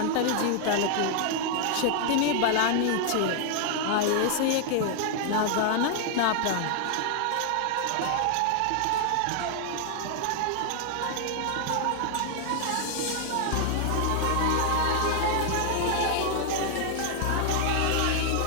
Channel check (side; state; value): both; different; correlation 0.00